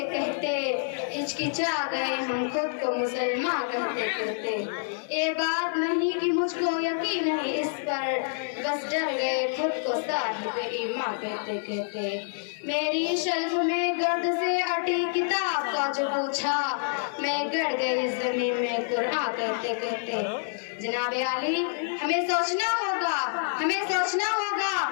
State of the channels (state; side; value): silent; right; digital silence